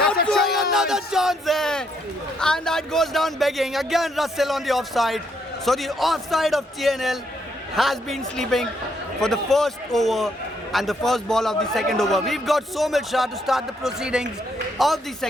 a chance. Another chance there. And that goes down begging. Again, Russell on the offside. So the offside of TNL has been sleeping for the first over and the first ball of the second over. We've got Somil Shah to start the proceedings of the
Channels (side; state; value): both; normal; correlation 0.74